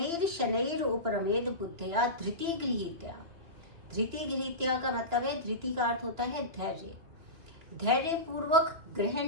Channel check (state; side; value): late; left; 2.9 ms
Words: शनैर उपरमेद बुद्धिया धृति गृहीत्या। धृति गृहीत्या का मतलब है, धृति का अर्थ होता है धैर्य। धैर्य पूर्वक